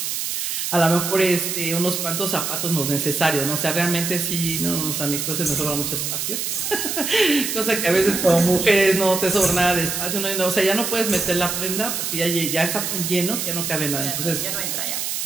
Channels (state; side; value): noise; right; hiss, 2 dB below the sound